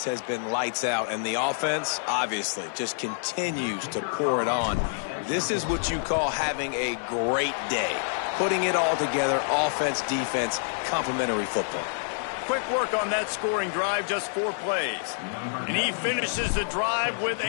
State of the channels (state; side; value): silent; right; 60 dB below the other